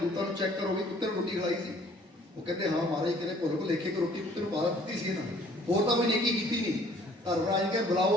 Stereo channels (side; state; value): both; normal; correlation 0.57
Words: ਨੂੰ ਚੈੱਕ ਕਰੋ ਵੀ ਕੁੱਤੇ ਨੂੰ ਰੋਟੀ ਖਿਲਾਈ ਸੀ। ਉਹ ਕਹਿੰਦੇ ਹਾਂ ਮਹਾਰਾਜ, ਕਿਤੇ ਭੁੱਲ ਭੁਲੇਖੇ ਕਿ ਰੋਟੀ ਕੁੱਤੇ ਨੂੰ ਪਾ ਦਿੱਤੀ ਸੀ ਇਹਨਾਂ, ਹੋਰ ਤਾਂ ਕੋਈ ਨੇਕੀ ਕੀਤੀ ਨਹੀਂ। ਧਰਮਰਾਜ ਕਹਿੰਦੇ